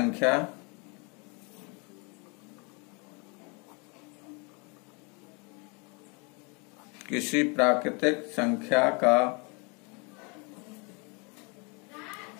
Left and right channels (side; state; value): right; quieter; 31.9 dB